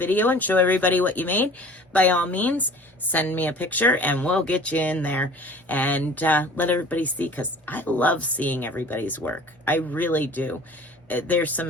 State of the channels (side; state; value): both; normal; correlation 0.46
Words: and show everybody what you made, by all means, send me a picture and we'll get you in there and let everybody see, because I love seeing everybody's work. I really do. There's some